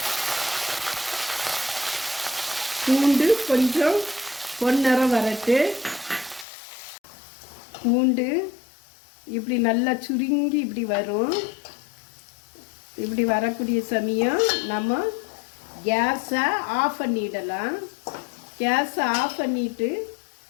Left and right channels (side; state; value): right; drops out; at 6.5 s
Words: பூண்டு கொஞ்சம் பொன்னிறம் வரட்டு. பூண்டு இப்படி நல்லா சுருங்கி இப்படி வரும். இப்படி வரக்கூடிய சமயம் நம்ம கேஸை ஆஃப் பண்ணிடலாம். கேஸை ஆஃப் பண்ணிவிட்டு